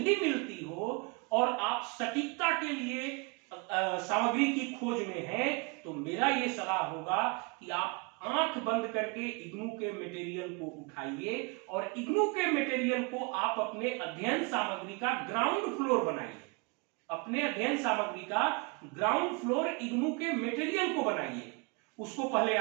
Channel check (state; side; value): quieter; left; 30.2 dB